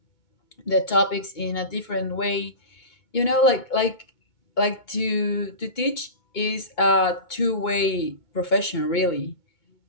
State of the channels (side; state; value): right; late; 2.2 ms